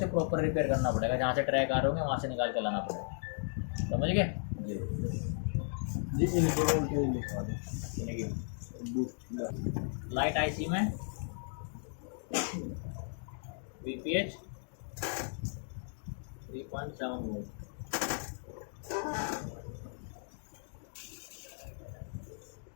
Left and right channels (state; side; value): silent; right; digital silence